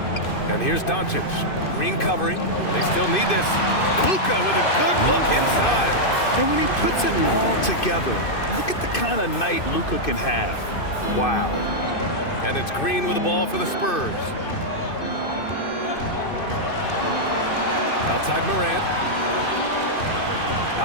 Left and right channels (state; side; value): late; right; 2.5 ms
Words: And here's Doncic. Green covering. They still need this. Luka with a good look inside. And when he puts it all together, look at the kind of night Luka can have. Wow. And it's Green with the ball for the Spurs. Outside Morant.